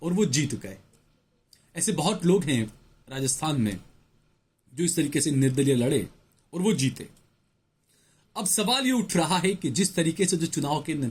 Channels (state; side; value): identical; both; correlation 1.00